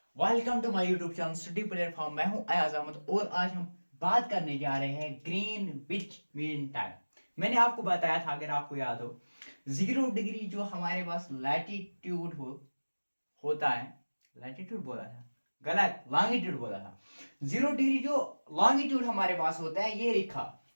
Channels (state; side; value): inverted; both; correlation -1.00